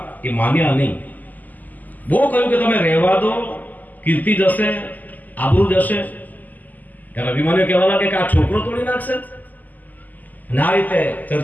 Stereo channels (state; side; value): late; right; 0.082 ms